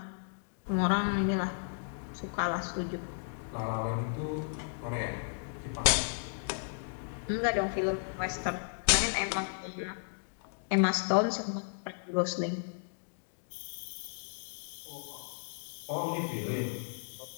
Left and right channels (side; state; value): right; silent; digital silence